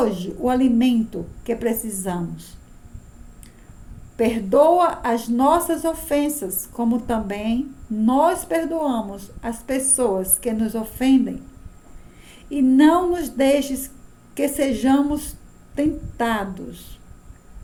o alimento que precisamos. Perdoa as nossas ofensas, como também nós perdoamos as pessoas que nos ofendem. E não nos deixes que sejamos tentados,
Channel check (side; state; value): both; identical; correlation 1.00